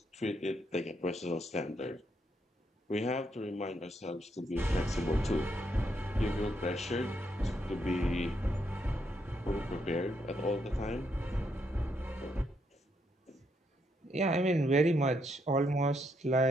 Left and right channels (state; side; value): normal; both; correlation 0.77